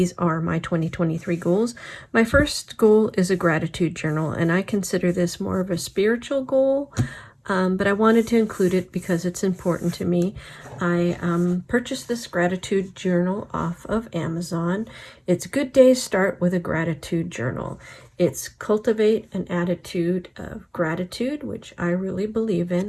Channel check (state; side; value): identical; both; correlation 1.00